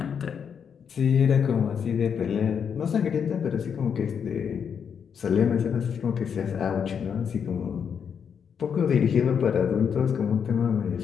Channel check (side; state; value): right; quieter; 7.2 dB